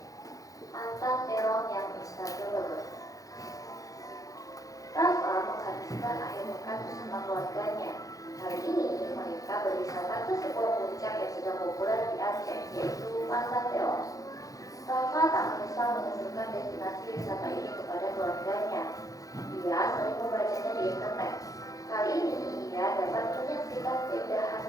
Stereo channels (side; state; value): right; late; 0.17 ms